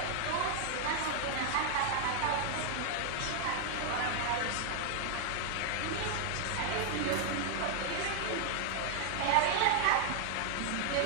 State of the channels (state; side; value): different; both; correlation 0.00